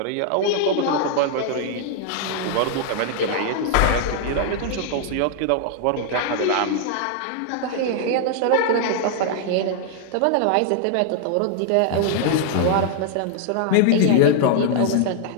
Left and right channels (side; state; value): both; different; correlation 0.00